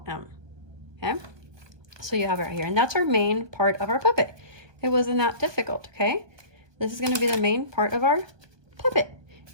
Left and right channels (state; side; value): late; left; 1.2 ms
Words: M. Okay, so you have it right here, and that's our main part of our puppet. It wasn't that difficult. Okay, This is going to be the main part of our puppet.